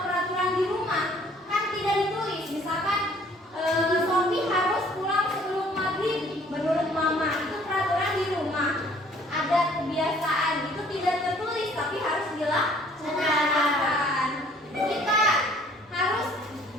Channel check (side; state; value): both; normal; correlation 0.57